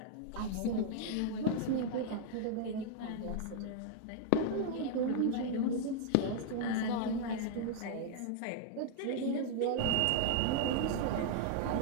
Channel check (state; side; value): different; both; correlation 0.00